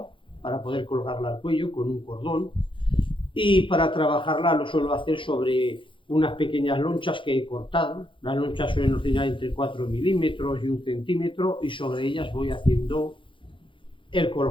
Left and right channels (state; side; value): late; right; 0.25 ms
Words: para poder colgarla al cuello con un cordón, y para trabajarla lo suelo hacer sobre unas pequeñas lonchas que he cortado. Las lonchas suelen oscilar entre 4 milímetros y 1 centímetro, y sobre ellas voy haciendo el